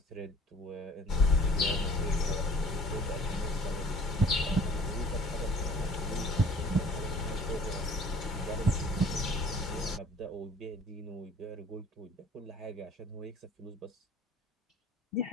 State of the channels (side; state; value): both; normal; correlation 0.51